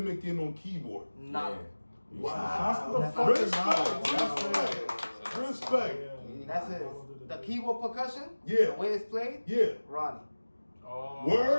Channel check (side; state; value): both; inverted; correlation -1.00